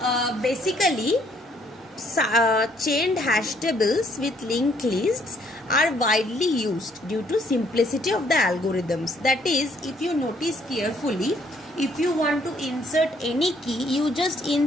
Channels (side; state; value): both; normal; correlation 0.66